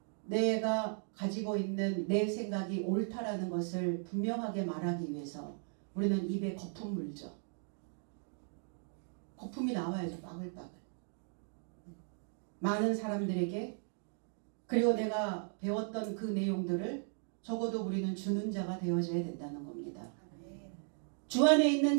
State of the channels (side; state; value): left; silent; 53 dB below the other